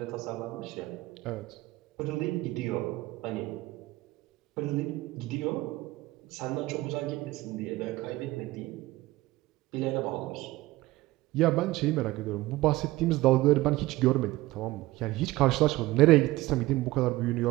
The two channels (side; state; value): left; quieter; 18.5 dB